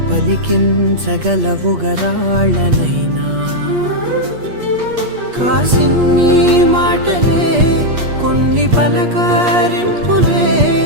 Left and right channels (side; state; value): left; late; 8.4 ms